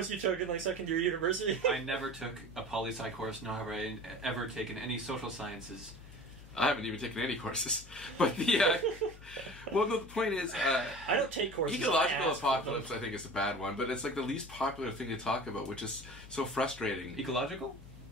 you took in like second year university. I never took a poli sci course, nor have I ever taken any social sciences. I haven't even taken any courses. But the well, no, the point is, I don't take courses. Ecological apocalypse, I think, is a bad one, but it's like the least popular thing to talk about, which is so frustrating. Ecological?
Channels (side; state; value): left; noise; hum, 17 dB below the sound